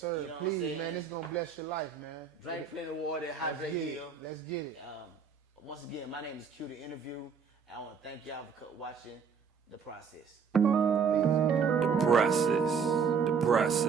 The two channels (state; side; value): quieter; left; 6.1 dB